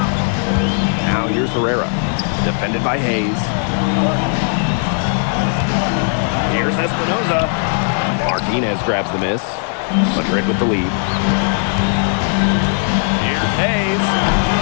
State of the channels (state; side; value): silent; right; 55 dB below the other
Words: Now here's Herrera, defended by Hayes. Here's Espinoza. Martinez grabs the miss. Madrid with the lead. Here's Hayes.